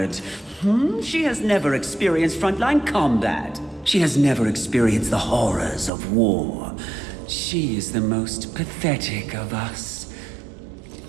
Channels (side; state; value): left; drops out; at 5.9 s